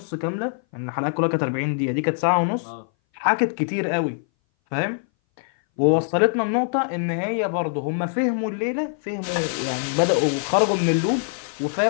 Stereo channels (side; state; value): right; silent; 60 dB below the other